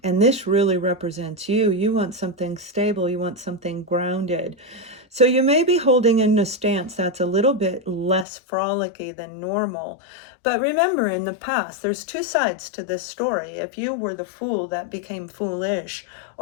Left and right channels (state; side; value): drops out; right; at 8.2 s